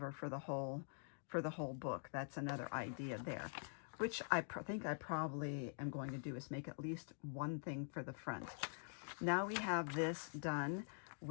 for the whole book. That's another idea there, which I think I probably am going to do, is make at least one thing for the front. Now we have this done.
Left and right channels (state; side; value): silent; right; digital silence